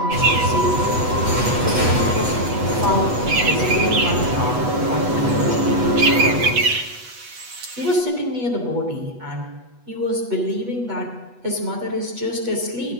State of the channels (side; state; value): left; late; 8.2 ms